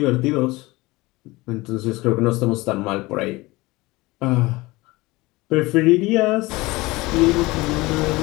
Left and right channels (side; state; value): right; quieter; 21.3 dB